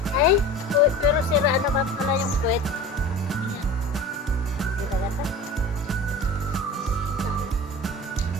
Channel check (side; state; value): both; normal; correlation 0.36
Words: Ay, pero sira naman pala yung puwet. Ayan. Hindi na gata.